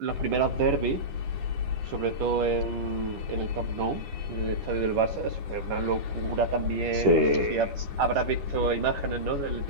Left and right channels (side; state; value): left; late; 10 ms